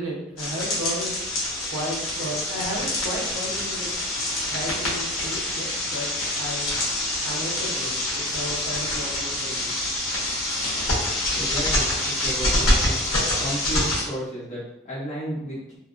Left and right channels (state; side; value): normal; both; correlation 0.32